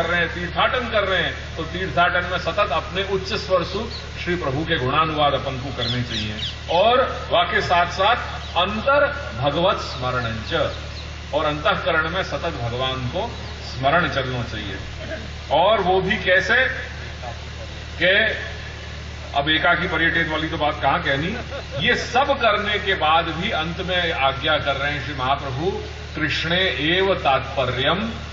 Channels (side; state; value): both; identical; correlation 1.00